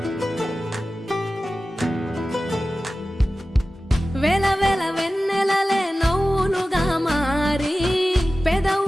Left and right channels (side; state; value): both; normal; correlation 0.95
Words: వేల వేల వెన్నెలలే నవ్వులుగా మారి